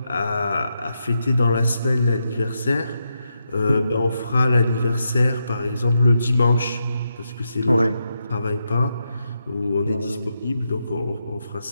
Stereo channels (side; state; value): both; inverted; correlation -0.84